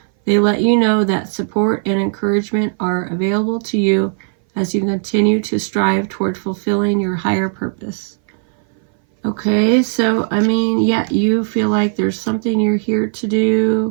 They let you know that support and encouragement are available to you as you continue to strive toward fulfilling your higher purpose. Okay, so, I mean, yeah, you feel like there's something you're here to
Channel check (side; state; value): left; silent; 60 dB below the other